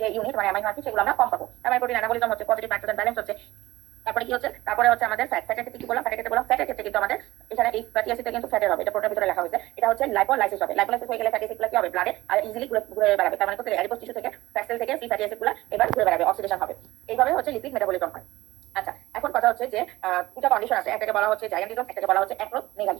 যে ইউনিট মানে অ্যামাইনো অ্যাসিড, সেগুলো আমরা কম পাবো। তার মানে প্রোটিন অ্যানাবলিজম হচ্ছে, পজিটিভ নাইট্রোজেন ব্যালেন্স হচ্ছে। তারপরে কি হচ্ছে, তারপরে হচ্ছে আমাদের ফ্যাটের ক্ষেত্রে কি বললাম, ফ্যাটের ক্ষেত্রে কিন্তু আমাদের এখানে এই ফ্যাটি অ্যাসিডটা কিন্তু ফ্যাটের হবে, এটা প্রোটিনের ভিতরে লেখা হয়েছে। এটা হচ্ছে লাইপোলাইসিস হবে। লাইপোলাইসিস হয়ে গেলে ফ্যাটি অ্যাসিডগুলো কি হবে, ব্লাডে আর ইজিলি ঘুরে বেড়াবে। তার মানে কোথায়, অ্যাডিপোজ টিস্যু থেকে, ফ্যাট সেল থেকে ফ্রি ফ্যাটি অ্যাসিডগুলো এবার ঘুরে বেড়াবে, অক্সিডেশন হবে। এইভাবে হচ্ছে লিপিড মেটাবলিজম হয়। আচ্ছা, এখন কথা হচ্ছে যে দুটা কন্ডিশন আছে, একটাকে বলা হচ্ছে জায়ান্টিজম, একটাকে বলা হচ্ছে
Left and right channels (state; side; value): quieter; left; 18.1 dB